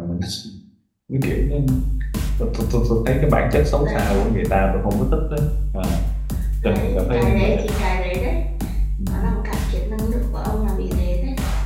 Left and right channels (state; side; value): identical; both; correlation 1.00